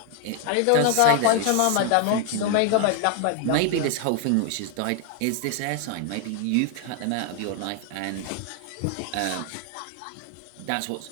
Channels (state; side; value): different; both; correlation 0.00